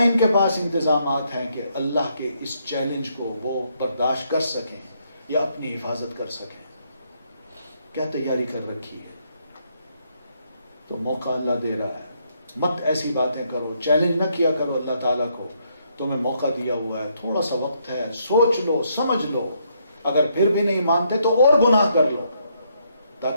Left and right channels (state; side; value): inverted; both; correlation -0.73